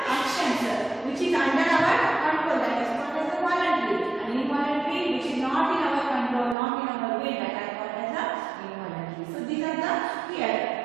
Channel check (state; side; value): drops out; left; at 6.6 s